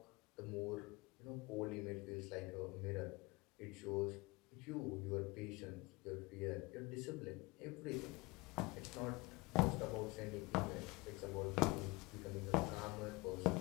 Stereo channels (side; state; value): right; quieter; 23.7 dB